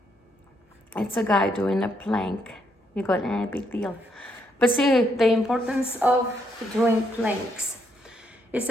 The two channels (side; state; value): both; normal; correlation 0.75